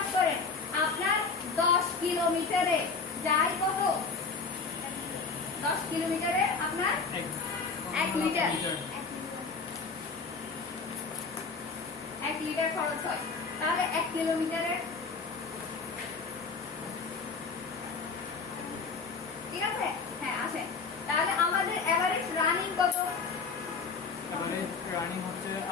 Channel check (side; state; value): right; quieter; 4.8 dB